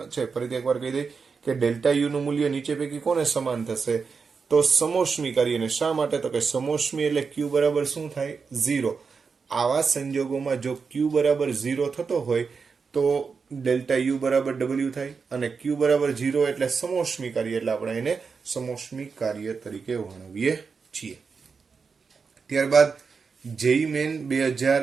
છે. ફરીથી એકવાર કહી દઈ કે ડેલ્ટા યુ નું મૂલ્ય નીચે પૈકી કોને સમાન થશે? તો સમોષ્મી કાર્યને. શા માટે? તો કે સમોષ્મી એટલે ક્યુ બરાબર શું થાય? 0. આવા સંજોગોમાં જો ક્યુ બરાબર 0 થતો હોય તો ડેલ્ટા યુ બરાબર ડબલ્યુ થાય અને ક્યુ બરાબર 0 એટલે સમોષ્મી કાર્ય, એટલે આપણે એને સમોષ્મી કાર્ય તરીકે વર્ણવીએ છીએ. ત્યારબાદ જેઈ મેન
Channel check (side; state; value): left; quieter; 5.3 dB